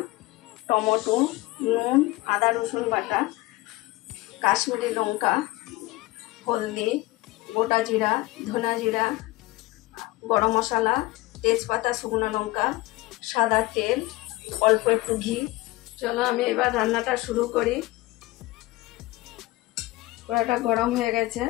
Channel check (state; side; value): quieter; right; 19.8 dB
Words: টমেটো, নুন, আদা রসুন বাটা, কাশ্মীরি লঙ্কা, হলদি, গোটা জিরা, ধনা জিরা, গরম মশলা, তেজপাতা, শুকনো লঙ্কা, সাদা তেল, অল্প একটু ঘি। চলো আমি এবার রান্নাটা শুরু করি। কড়াটা গরম হয়ে গেছে,